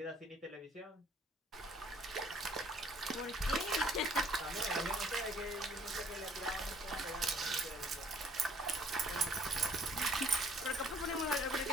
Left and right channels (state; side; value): normal; both; correlation 0.60